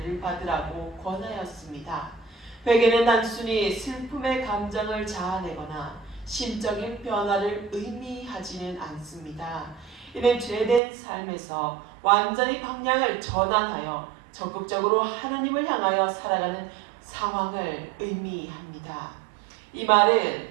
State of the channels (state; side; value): drops out; left; at 10.8 s